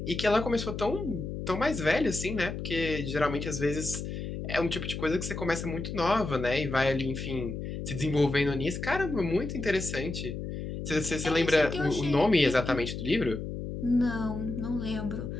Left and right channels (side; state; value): left; noise; hum, 6 dB below the sound